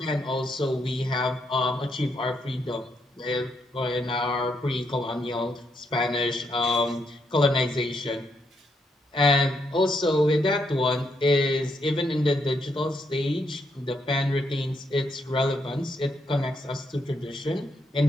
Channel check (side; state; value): both; normal; correlation 0.77